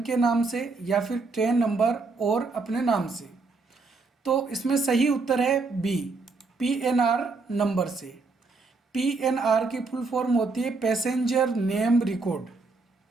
के नाम से या फिर ट्रेन नंबर और अपने नाम से? तो इसमें सही उत्तर है बी, PNR नंबर से। PNR की फुल फॉर्म होती है पैसेंजर नेम रिकॉर्ड।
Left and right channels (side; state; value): left; quieter; 3.9 dB